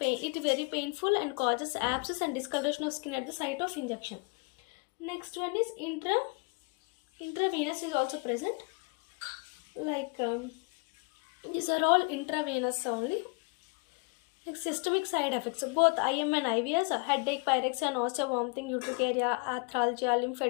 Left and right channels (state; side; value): quieter; right; 32.5 dB